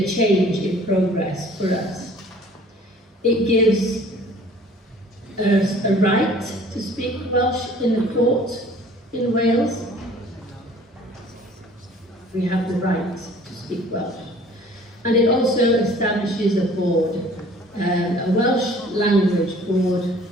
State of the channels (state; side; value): normal; both; correlation 0.52